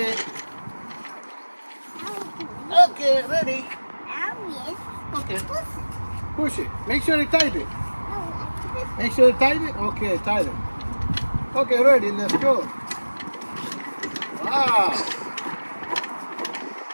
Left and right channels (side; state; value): both; inverted; correlation -1.00